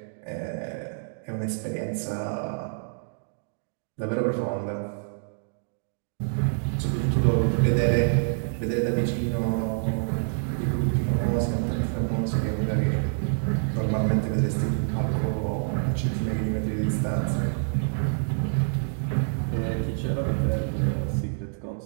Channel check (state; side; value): silent; left; digital silence